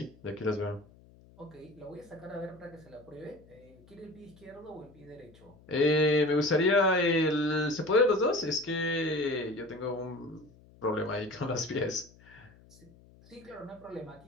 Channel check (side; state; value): left; noise; hum, 25 dB below the sound